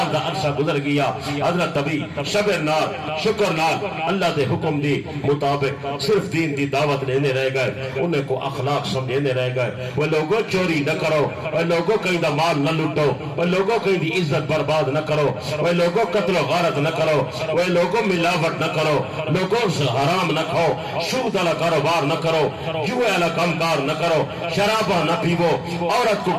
دا عرصہ گزر گیا حضرت ابھی صبر نال شکر نال اللہ دے حکم دی مطابق صرف دین دی دعوت لینے رہ گئے انہیں کو اخلاق سمجھے دینے رہ گئے وہ لوگوں چوری نہ کرو وہ لوگوں کہیں دا مال نہ لٹو وہ لوگوں کہیں دی عزت برباد نہ کرو وہ لوگوں قتل و غارت نہ کرو وہ لوگوں ملاوٹ نہ کرو لوگوں سے حرام نہ کھاؤ سود والا کاروبار نہ کرو جوئے والا کامکار نہ کرو شرابہ نہ پیو عورت کو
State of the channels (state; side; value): identical; both; correlation 1.00